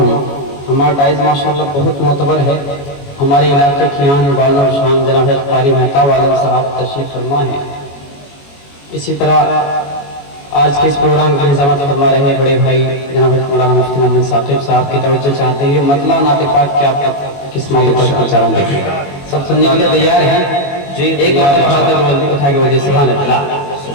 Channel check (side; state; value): right; late; 21 ms